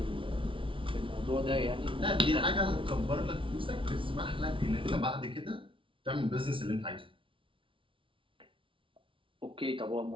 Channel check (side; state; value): left; late; 0.25 ms